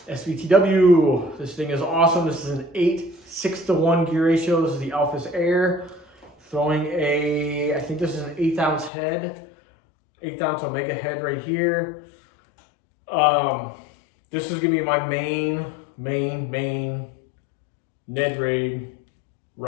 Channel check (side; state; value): right; drops out; at 8.9 s